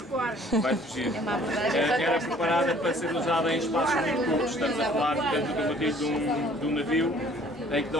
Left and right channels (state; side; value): normal; both; correlation 0.56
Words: vai fugir. Era preparada para ser usada em espaços muito curtos, estamos a falar portanto de um navio em que